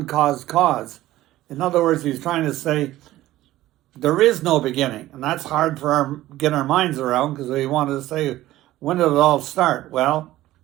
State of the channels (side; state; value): left; quieter; 15.5 dB